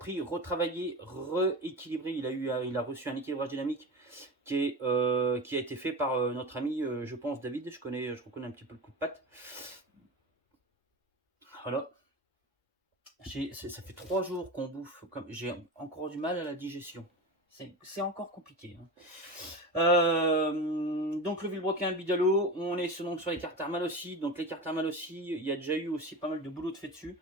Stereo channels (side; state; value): both; normal; correlation 0.27